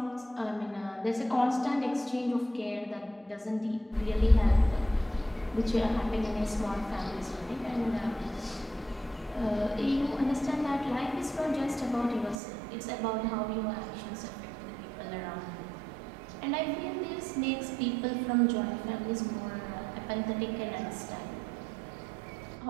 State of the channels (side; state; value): left; drops out; at 12.4 s